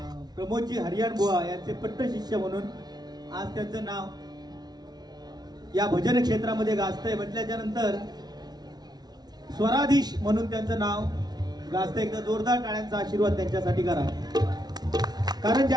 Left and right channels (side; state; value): left; late; 0.19 ms